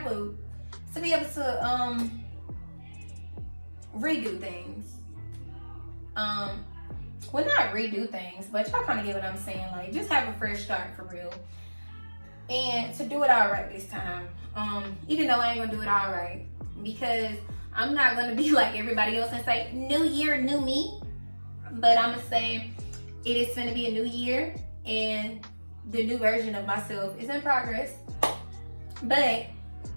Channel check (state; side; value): inverted; both; correlation -1.00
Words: able to redo things. Well, not redo things, but y'all kind of get what I'm saying. Like, just have a fresh start for real, and to do it all right this time. Even though I ain't gonna do it all right, because I'm not gonna be like everybody else and say new year, new me. But I'm gonna say it is gonna be a new year, and the new version of myself is in progress. But